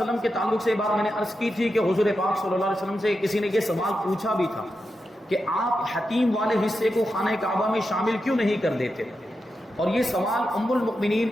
کے تعلق سے یہ بات میں نے عرض کی تھی کہ حضور پاک صلی اللہ علیہ وسلم سے کسی نے یہ سوال پوچھا بھی تھا کہ آپ حتیم والے حصے کو خانہ کعبہ میں شامل کیوں نہیں کر دیتے، اور یہ سوال ام المؤمنین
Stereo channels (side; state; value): both; normal; correlation 0.88